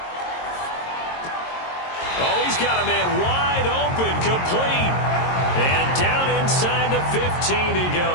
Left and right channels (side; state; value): right; late; 22 ms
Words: Oh, he's got a man wide open, complete. And down inside the 15 he